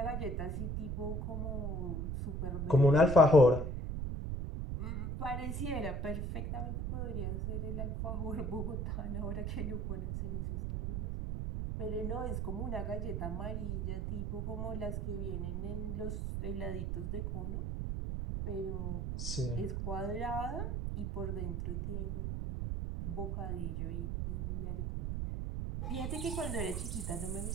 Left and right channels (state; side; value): noise; right; rumble, 1 dB below the sound